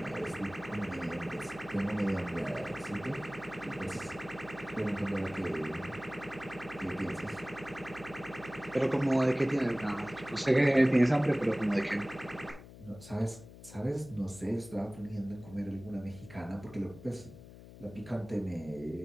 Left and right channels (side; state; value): left; noise; hum, 17 dB below the sound